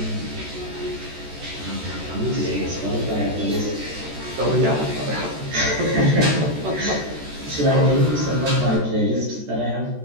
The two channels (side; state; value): left; late; 14 ms